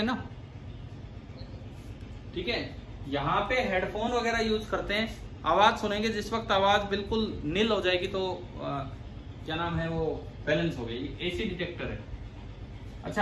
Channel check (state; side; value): identical; both; correlation 1.00